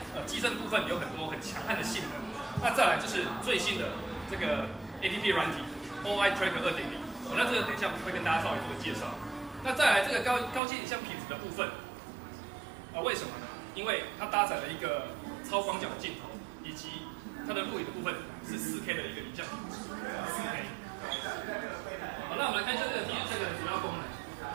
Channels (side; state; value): left; drops out; at 10.6 s